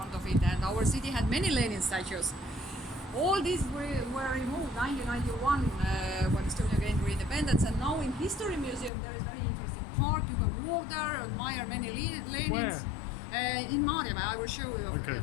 of it, and our city had many Lenin statues. All these were removed 1991 when Estonia gained independence, and now in History Museum there is very interesting park. You can walk there, admire many Lenins. In Maarjamäe, I will show you Okay,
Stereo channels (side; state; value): right; drops out; at 8.9 s